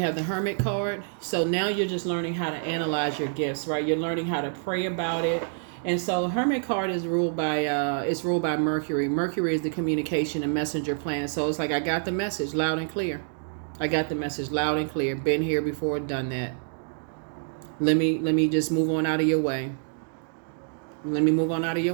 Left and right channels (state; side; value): silent; left; digital silence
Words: the Hermit card. So now you're just learning how to analyze your gifts, right? You're learning how to pray about it. And so Hermit card is ruled by Mercury. Mercury is the communication and messenger planet. So it's like, I got the message loud and clear. I got the message loud and clear. Been here before, done that. Let me just move on out of your way. Let me move on out of your